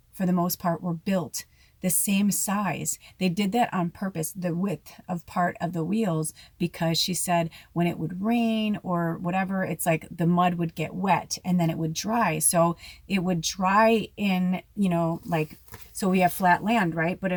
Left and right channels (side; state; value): both; identical; correlation 1.00